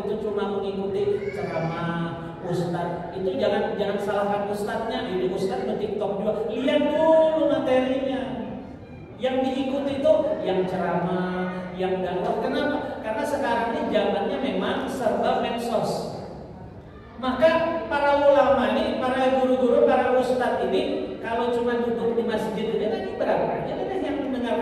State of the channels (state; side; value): identical; both; correlation 1.00